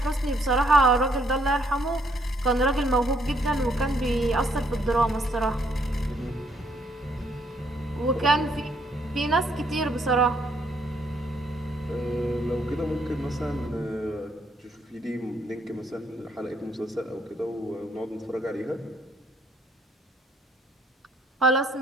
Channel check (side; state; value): both; normal; correlation 0.69